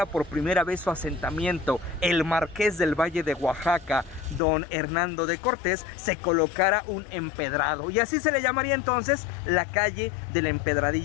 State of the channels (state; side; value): drops out; right; at 4.4 s